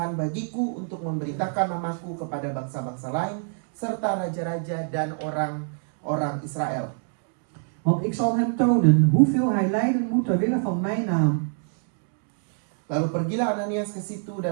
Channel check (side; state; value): left; silent; 61 dB below the other